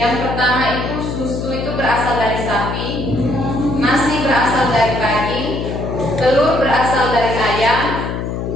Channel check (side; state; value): left; noise; hum, 4 dB below the sound